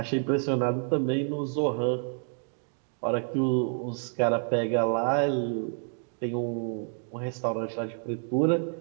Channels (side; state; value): left; silent; 59 dB below the other